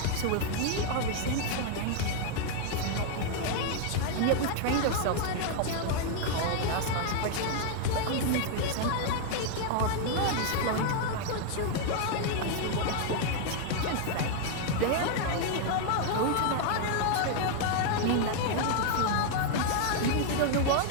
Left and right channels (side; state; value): both; different; correlation 0.00